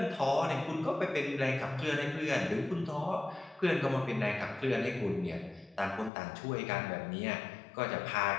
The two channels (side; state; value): right; drops out; at 6.1 s